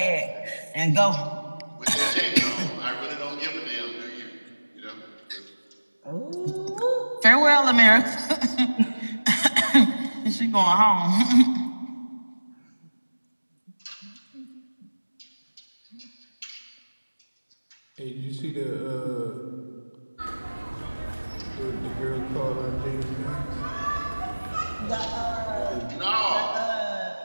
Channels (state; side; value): inverted; both; correlation -1.00